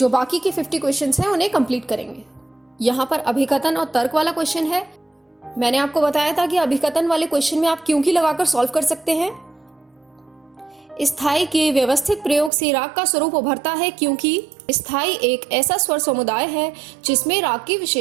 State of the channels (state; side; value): drops out; left; at 12.5 s